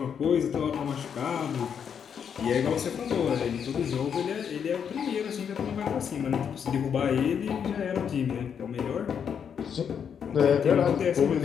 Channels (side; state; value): right; quieter; 7.6 dB